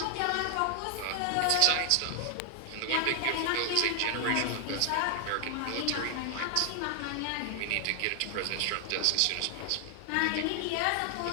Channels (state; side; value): different; both; correlation 0.00